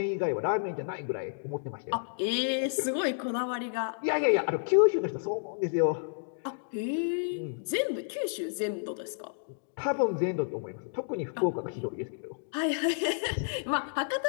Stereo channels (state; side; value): silent; right; digital silence